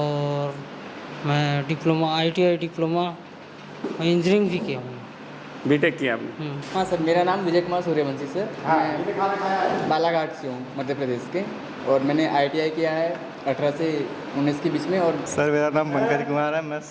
मैं डिप्लोमा ITI डिप्लोमा इंजीनियरिंग भी किया हूँ। बीटेक किया आपने? हाँ सर, मेरा नाम विजय कुमार सूर्यवंशी सर। मैं बालाघाट से हूँ, मध्य प्रदेश के, और मैंने ITI किया है 18 से 19 के बीच में। और सर मेरा नाम पंकज कुमार है। मैं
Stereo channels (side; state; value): both; identical; correlation 1.00